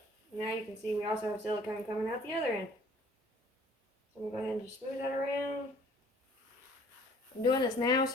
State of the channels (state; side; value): normal; both; correlation 0.55